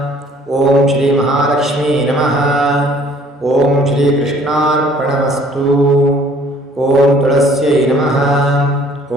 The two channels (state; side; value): normal; both; correlation 0.57